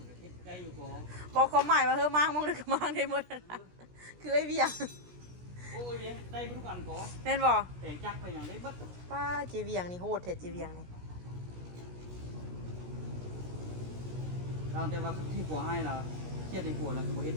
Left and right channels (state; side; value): late; left; 17 ms